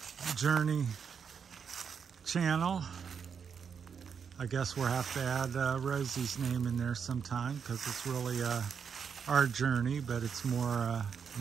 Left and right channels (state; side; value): quieter; left; 6.7 dB